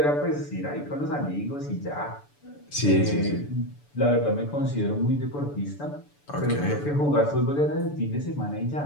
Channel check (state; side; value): late; right; 6.9 ms